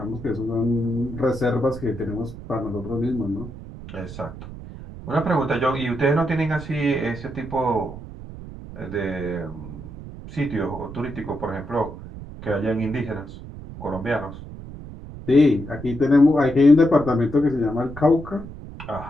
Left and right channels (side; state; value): right; noise; rumble, 13 dB below the sound